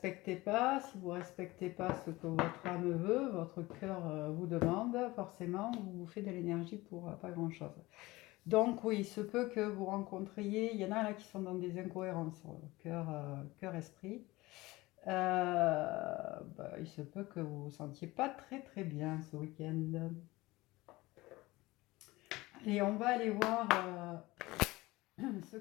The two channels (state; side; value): quieter; right; 20.2 dB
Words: pas, si vous ne respectez pas ce que votre âme veut, votre cœur vous demande, forcément, vous vous faites de l'énergie pour pas grand-chose. Donc oui, il se peut que vous rencontriez, il y en a là qui sont dans des incohérences, cœur-esprit. Il se peut que vous vous sentiez pas très très bien ce week-end. Et on va aller voir ce